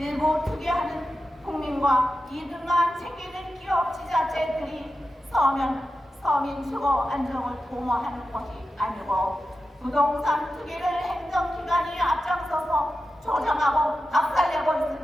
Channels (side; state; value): both; normal; correlation 0.91